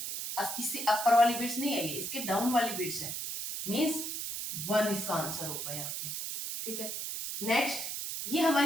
इससे अपर वाली बिट्स नहीं है, ये इसके डाउन वाली बिट्स है, मींस 1 इसका आंसर होगा यहाँ पे, ठीक है। नेक्स्ट, ये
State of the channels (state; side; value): noise; right; hiss, 4 dB below the sound